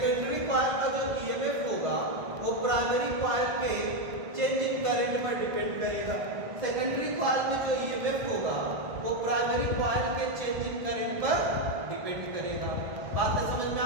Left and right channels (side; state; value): left; late; 1.5 ms